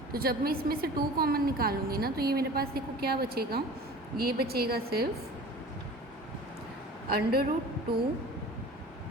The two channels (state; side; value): normal; both; correlation 0.41